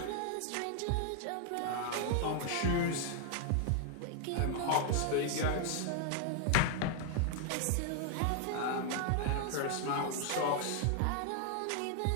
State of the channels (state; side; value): different; both; correlation 0.00